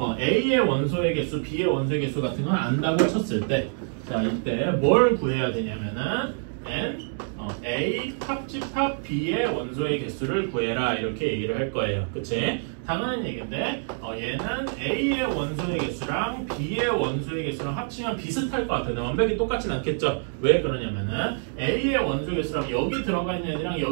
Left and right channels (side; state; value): left; silent; 57 dB below the other